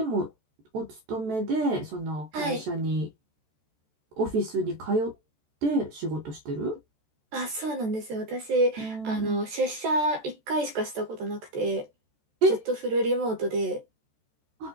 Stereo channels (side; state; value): left; late; 14 ms